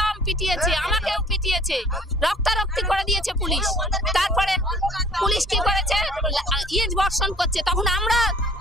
পিটিয়েছে, আমাকেও পিটিয়েছে, রক্তারক্তি করে দিয়েছে পুলিশ। তারপরে পুলিশ কি করেছে, ইট বর্ষণ করছে। তখন আমরা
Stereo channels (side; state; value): both; normal; correlation 0.54